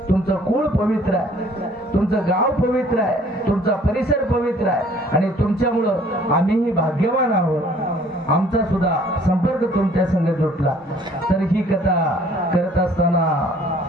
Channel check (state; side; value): normal; both; correlation 0.56